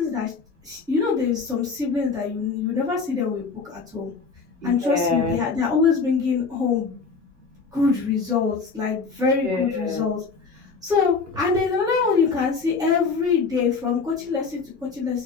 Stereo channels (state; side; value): quieter; right; 4.9 dB